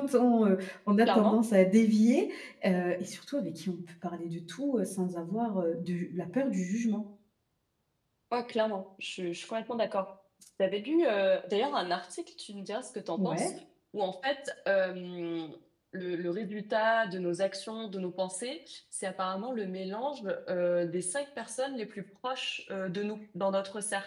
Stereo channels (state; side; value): identical; both; correlation 1.00